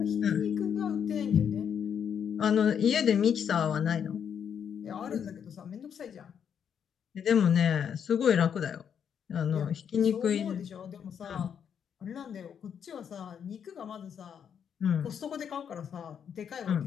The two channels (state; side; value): quieter; right; 7.9 dB